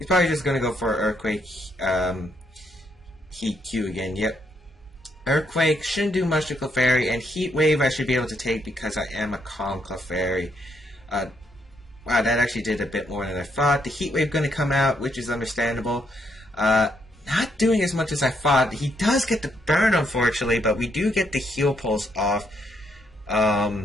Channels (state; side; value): normal; both; correlation 0.74